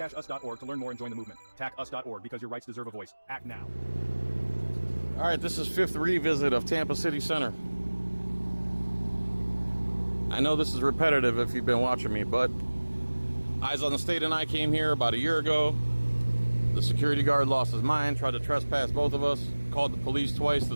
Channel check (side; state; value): both; inverted; correlation -1.00